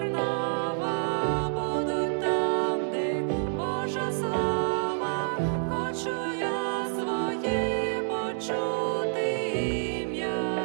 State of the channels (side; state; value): left; silent; digital silence